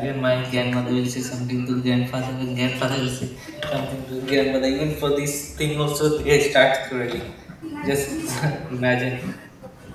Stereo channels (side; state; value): both; identical; correlation 1.00